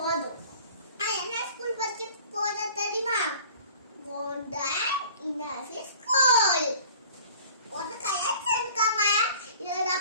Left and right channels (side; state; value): both; inverted; correlation -0.47